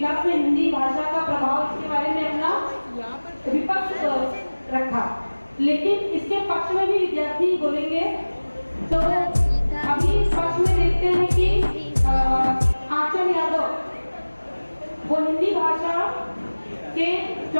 में हिंदी भाषा का प्रभाव, इसके बारे में अपना विपक्ष रखा, लेकिन इसके पक्ष में भी विद्यार्थी बोलेंगे। तो अभी पक्ष में देखते हैं कि आंचल यादव वो हिंदी भाषा के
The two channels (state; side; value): inverted; both; correlation -1.00